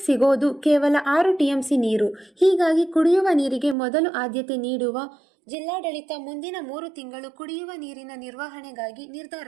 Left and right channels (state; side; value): drops out; left; at 3.8 s